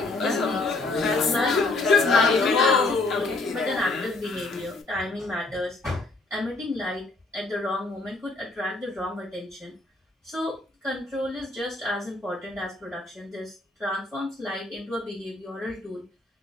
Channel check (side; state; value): right; quieter; 3.2 dB